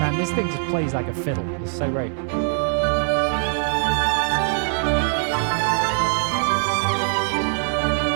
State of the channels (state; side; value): silent; left; 64 dB below the other